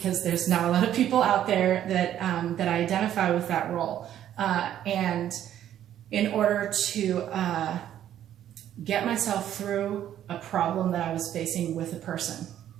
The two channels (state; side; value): quieter; left; 11.1 dB